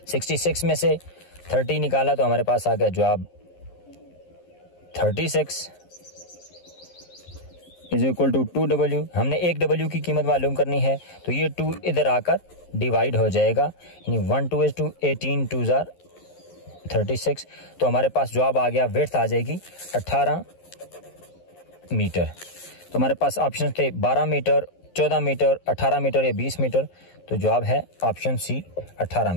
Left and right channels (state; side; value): late; right; 11 ms